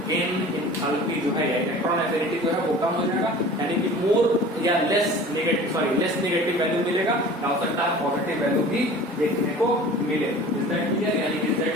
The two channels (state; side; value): normal; both; correlation 0.42